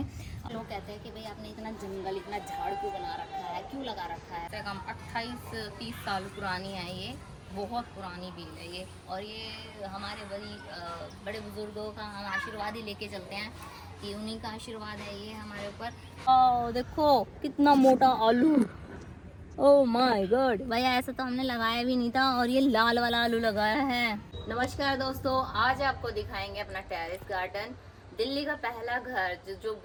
लोग कहते हैं कि भाई आपने इतना जंगल, इतना झाड़ क्यों बना रखा है, क्यों लगा रखा है। कम 28-30 साल पुरानी है ये, बहुत पुरानी बेल है ये। और ये हमारे बड़े बुजुर्गों का हम आशीर्वाद ही लेके चलते हैं कि उन्हीं का आशीर्वाद है ये हमारे ऊपर। देखो कितना मोटा आलू, ओह माय गॉड भैया, ऐसा तो हमने लगाया भी नहीं था और ये लाल वाला आलू लगाया है। नमस्कार दोस्तों, आज आपको दिखाएंगे अपना टेरेस गार्डन, दिल्ली का पहला घर जो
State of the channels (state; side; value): identical; both; correlation 1.00